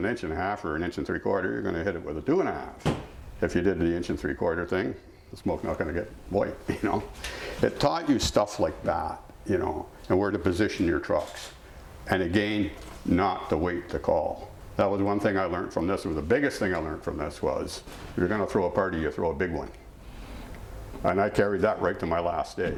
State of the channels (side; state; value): both; identical; correlation 1.00